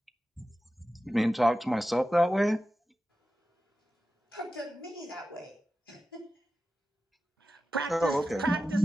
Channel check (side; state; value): both; normal; correlation 0.93